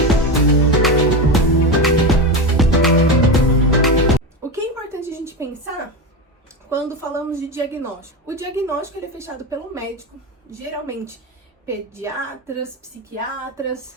O que é importante a gente pensar quando falamos de diagnóstico? O diagnóstico ele é fechado pelo médico, geralmente pediatras, psiquiatras,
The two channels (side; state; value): both; normal; correlation 0.18